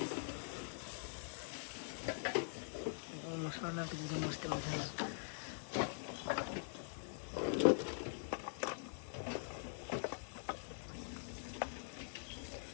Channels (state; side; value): silent; right; digital silence